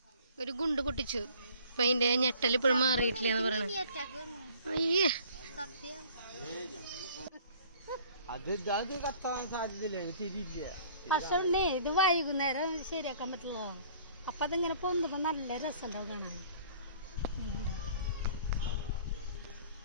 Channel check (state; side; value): inverted; both; correlation -0.53